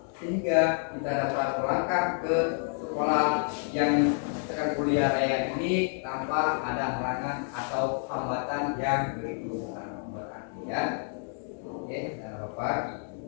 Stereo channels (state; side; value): silent; right; 56 dB below the other